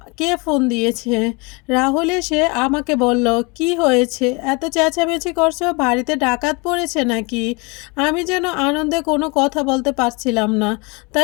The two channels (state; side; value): quieter; right; 28.9 dB